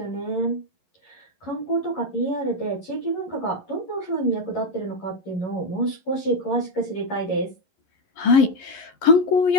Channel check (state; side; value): late; right; 11 ms